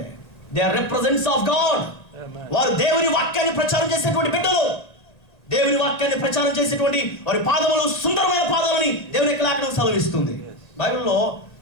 They are represents of God. వారు దేవుని వాక్యాన్ని ప్రచారం చేసేటువంటి బిడ్డలు. దేవుని వాక్యాన్ని ప్రచారం చేసేటువంటి వారి పాదములు సుందరమైన పాదాలని దేవుని యొక్క లేఖనం సెలవిస్తుంది. బైబిల్లో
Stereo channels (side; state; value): right; late; 1.9 ms